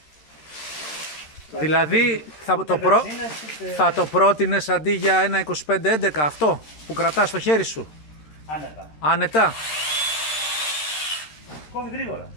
Δηλαδή θα το πρότεινες αντί για ένα 2511 αυτό που κρατάς στο χέρι σου? Άνετα. Άνετα. Κόβει γρήγορα.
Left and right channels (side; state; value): right; late; 13 ms